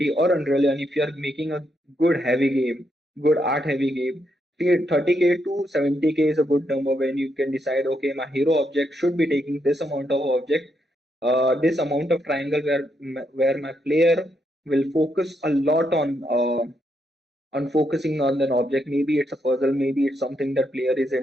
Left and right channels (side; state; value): both; normal; correlation 0.79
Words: or Unreal, and if you're making a good heavy game, good art heavy game, 30K to 70K is a good number when you can decide, okay, my hero object should be taking this amount of object, this amount of triangle where my player will focus a lot on focusing on an object. Maybe it's a puzzle, maybe it's something that player is